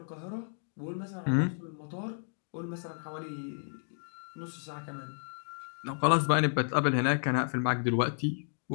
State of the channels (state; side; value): silent; right; digital silence